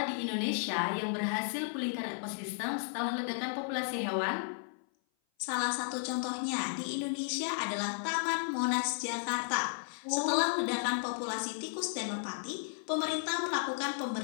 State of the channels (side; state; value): right; silent; 55 dB below the other